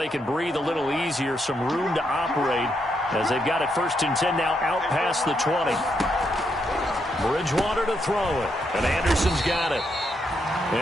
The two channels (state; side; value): normal; both; correlation 0.79